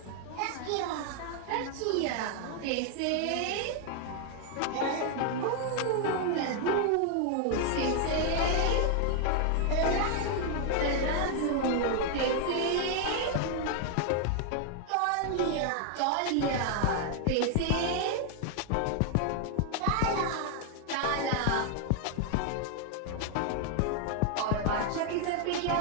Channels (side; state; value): both; different; correlation 0.00